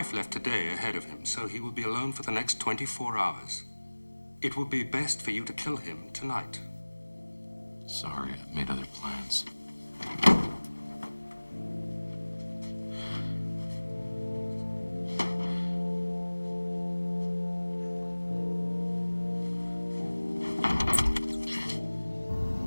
left today ahead of him, so he will be alone for the next 24 hours. It would be best for you to kill him tonight. Sorry, I've made other plans.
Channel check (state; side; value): inverted; both; correlation -1.00